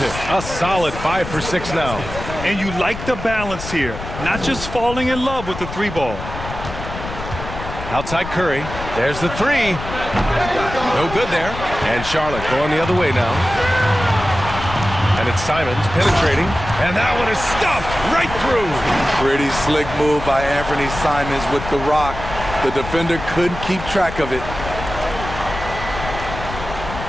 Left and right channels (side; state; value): left; noise; rumble, 9 dB below the sound